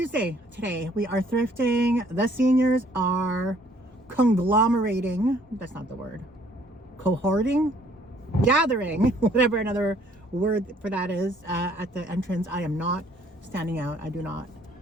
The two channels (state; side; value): normal; both; correlation 0.61